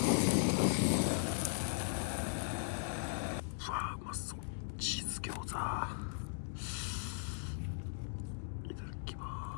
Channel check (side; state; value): right; silent; digital silence